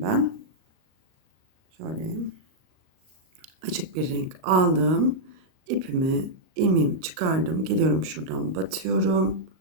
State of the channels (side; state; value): left; late; 38 ms